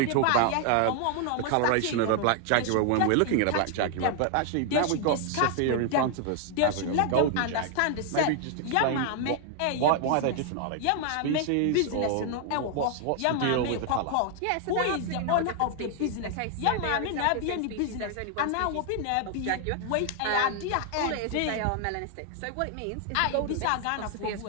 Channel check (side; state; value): both; different; correlation 0.00